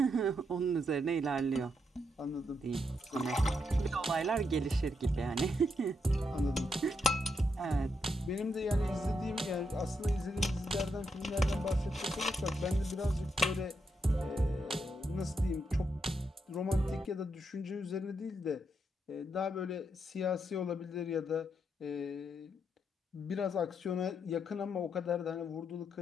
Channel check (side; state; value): both; normal; correlation 0.80